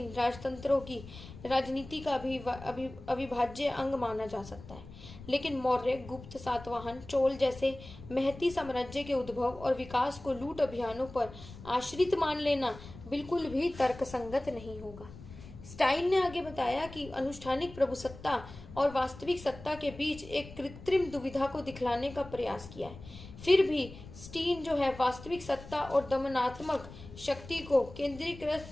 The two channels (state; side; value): noise; left; rumble, 16 dB below the sound